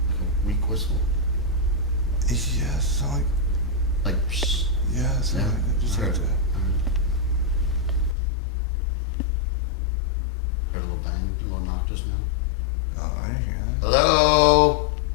Like a weak whistle? Yeah, it sound like, Like, psst. yeah, it sound Yeah, like it. Just I like heard it. that. Heard a little bang, a little knock just now. Oh, I didn't hear that. Hello?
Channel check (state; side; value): drops out; right; at 8.2 s